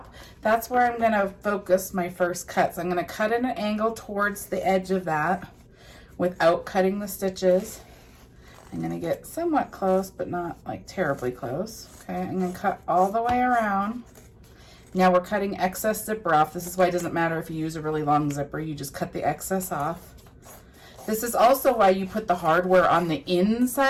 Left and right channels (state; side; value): identical; both; correlation 1.00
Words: That's where I'm going to focus my first cuts. I'm going to cut at an angle towards the edge of that without cutting the stitches. I'm going to get somewhat close, but not like terribly close. Okay, I'm going to cut all the way around. Now we're cutting excess zipper off. This is why it doesn't matter if you use a really long zipper. You just cut the excess off. This is also why you put the hardware on the